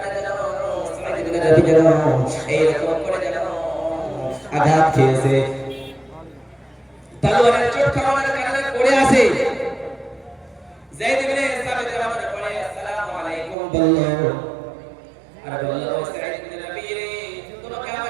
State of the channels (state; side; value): drops out; left; at 13.6 s